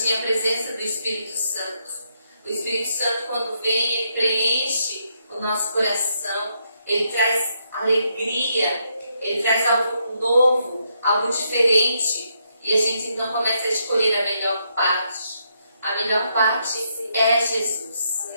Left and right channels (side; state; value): both; inverted; correlation -0.77